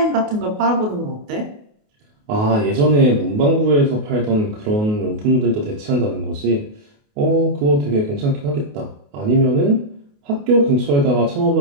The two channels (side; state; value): left; late; 28 ms